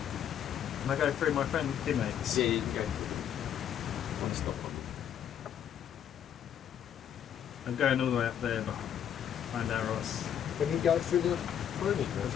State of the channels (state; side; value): quieter; right; 9.4 dB